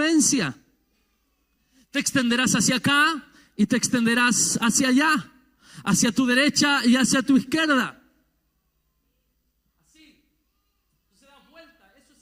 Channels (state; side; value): identical; both; correlation 1.00